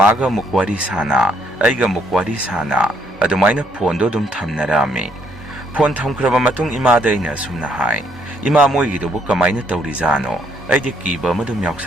ꯑꯃꯨꯛ ꯋꯥꯔꯤ ꯁꯥꯟꯅ, ꯑꯩꯒ ꯑꯃꯨꯛ ꯋꯥꯔꯤ ꯁꯥꯟꯅ, ꯑꯗꯨꯃꯥꯏꯅ ꯐꯣꯟꯗꯣ ꯑꯗꯨꯝ ꯊꯝꯅꯔꯝꯃꯤ꯫ ꯐꯣꯟ ꯊꯝꯈ꯭ꯔꯕ ꯃꯇꯨꯡ ꯏꯃꯥꯗ ꯑꯩꯅ ꯑꯁꯨꯝꯅ ꯍꯥꯏ, ꯏꯃꯥ ꯃꯣꯏꯒꯤꯗꯨꯕꯨ ꯀꯃꯥꯏꯅ ꯇꯧꯔꯤꯖꯥꯠꯅꯣ? ꯑꯩꯗꯤ ꯀꯤꯕ ꯑꯃ ꯑꯗꯨꯝ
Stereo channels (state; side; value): normal; both; correlation 0.70